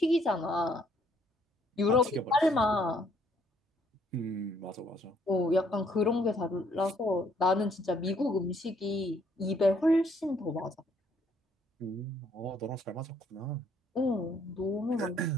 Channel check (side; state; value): both; normal; correlation 0.66